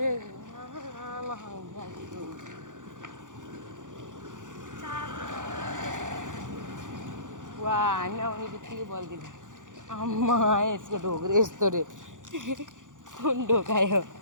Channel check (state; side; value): late; left; 0.87 ms